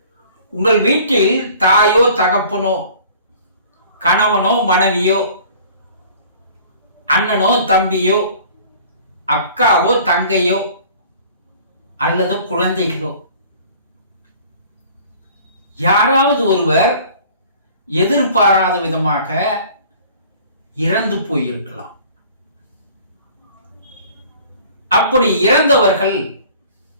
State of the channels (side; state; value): both; inverted; correlation -0.49